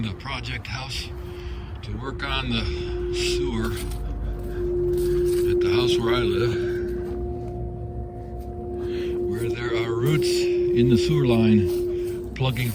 the project house to work on the sewer at the house where I live, where there are roots in the sewer line plugging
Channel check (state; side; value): identical; both; correlation 1.00